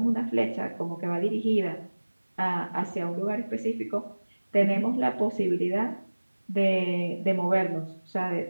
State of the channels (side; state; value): both; inverted; correlation -1.00